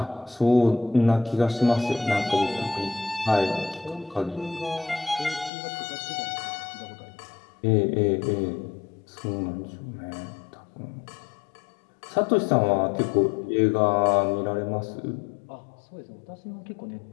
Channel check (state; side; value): drops out; right; at 5.5 s